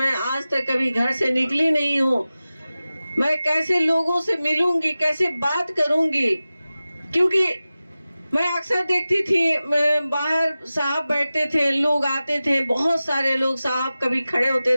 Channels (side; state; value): both; inverted; correlation -0.96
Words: आज तक कभी घर से निकली नहीं हूँ, मैं कैसे लोगों से मिलूंगी, कैसे बात करूंगी, क्योंकि मैं अक्सर देखती थी बाहर साहब बैठते थे, लोग आते थे, बहुत सारे लोग, साहब कभी खड़े होते